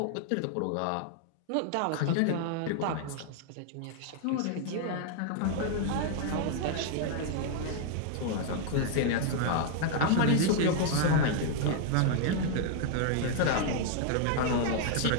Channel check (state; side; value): different; both; correlation 0.00